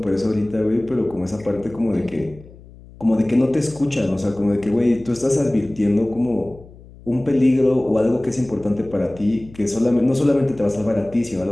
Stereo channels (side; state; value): left; noise; hum, 21 dB below the sound